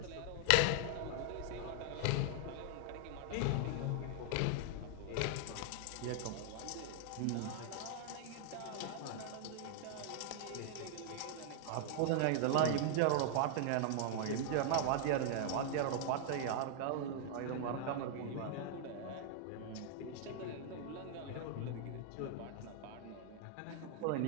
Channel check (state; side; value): different; both; correlation 0.00